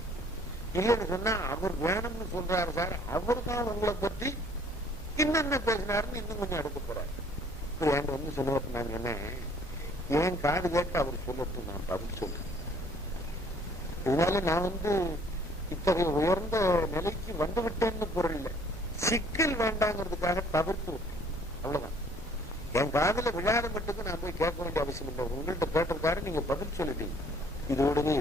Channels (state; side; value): normal; both; correlation 0.58